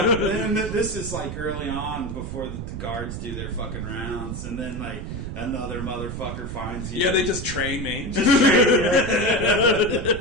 and this is like early on before the guards do their fucking rounds, and then like another motherfucker finds you. Yeah, they just train me.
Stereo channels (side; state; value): right; noise; rumble, 6 dB below the sound